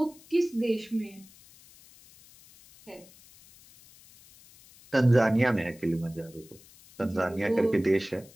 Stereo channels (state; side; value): noise; left; hiss, 24 dB below the sound